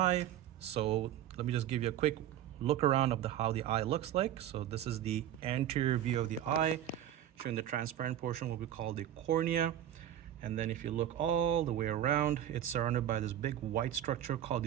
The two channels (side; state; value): left; quieter; 11.4 dB